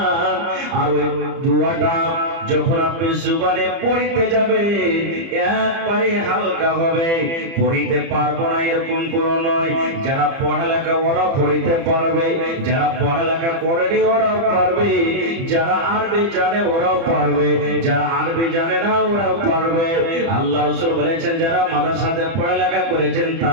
আর ওই দোয়াটা যখন আপনি জুবানে পড়িতে যাবে একবারে হালকা হবে। পড়িতে পারবো না এরকম কোনো নয়, যারা পড়ালেখা ওরা পড়িতে পারবে, যারা পড়ালেখা করেনি ওরাও পারবে, যারা আরবি জানে ওরাও পারবে, যারা আরবি জানে না ওরাও পারবে। আল্লাহ রাসূল বলেছেন যারা মাদ্রাসাতে পড়ালেখা করেছেন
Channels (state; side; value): late; left; 30 ms